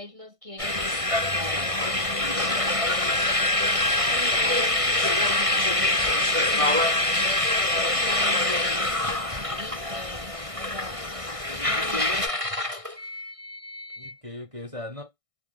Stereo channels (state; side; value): late; left; 1.6 ms